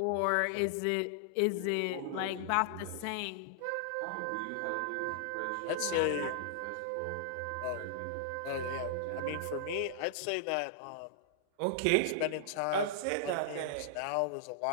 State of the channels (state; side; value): different; both; correlation -0.01